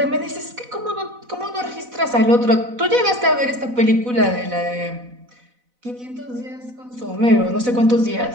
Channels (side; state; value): left; late; 4.0 ms